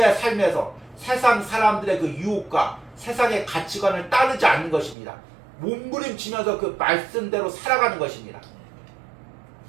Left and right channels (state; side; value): drops out; left; at 5.0 s